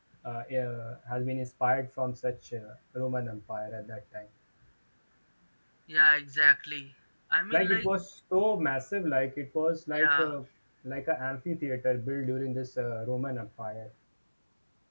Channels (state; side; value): inverted; both; correlation -1.00